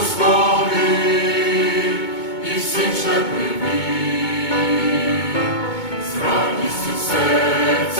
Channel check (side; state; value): right; late; 2.2 ms